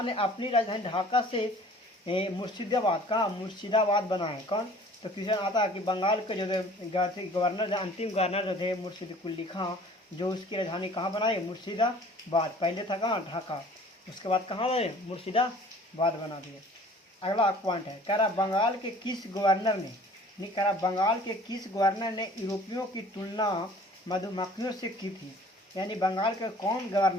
ने अपनी राजधानी ढाका से मुर्शिदाबाद, कहाँ? मुर्शिदाबाद बनाए। कौन? तो क्वेश्चन आता है कि बंगाल के जो गवर्नर, अंतिम गवर्नर जो थे मुर्शिद कुली खां, जो उसकी राजधानी कहाँ बनाए? मुर्शिदाबाद। पहले था कहाँ? ढाका। उसके बाद कहाँ बने? मुर्शिदाबाद बना दिए। अगला पॉइंट है, कह रहा बंगाल के किस गवर्नर ने, नहीं कह रहा बंगाल के किस गवर्नर ने यूरोपियों की तुलना मधुमक्खियों से की थी। यानी बंगाल के कौन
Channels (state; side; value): normal; both; correlation 0.50